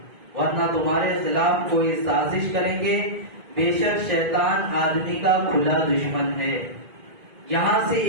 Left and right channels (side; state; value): left; late; 2.0 ms